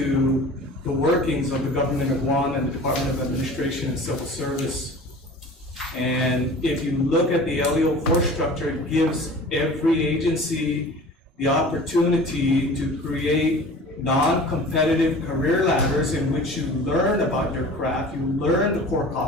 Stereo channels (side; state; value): both; normal; correlation 0.41